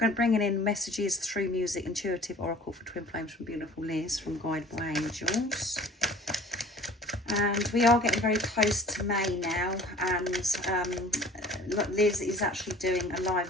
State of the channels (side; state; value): both; normal; correlation 0.47